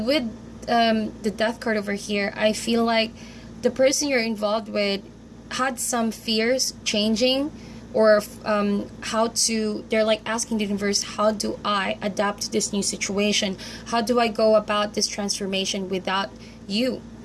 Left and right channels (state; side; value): identical; both; correlation 1.00